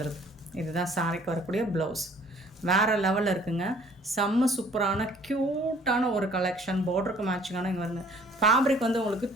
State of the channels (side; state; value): both; normal; correlation 0.56